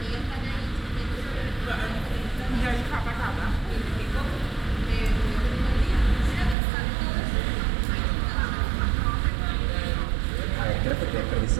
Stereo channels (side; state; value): left; drops out; at 6.6 s